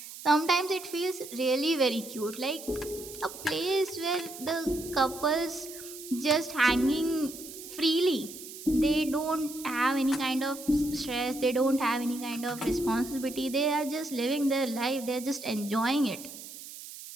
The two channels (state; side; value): noise; right; hiss, 13 dB below the sound